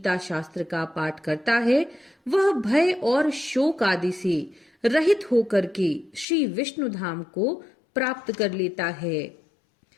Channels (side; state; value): right; drops out; at 6.2 s